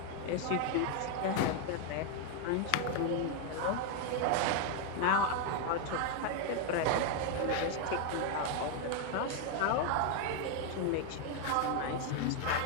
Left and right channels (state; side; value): different; both; correlation 0.01